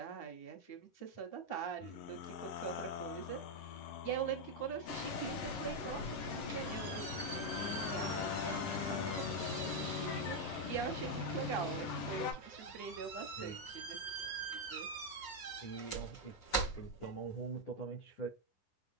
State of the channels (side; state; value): right; late; 9.5 ms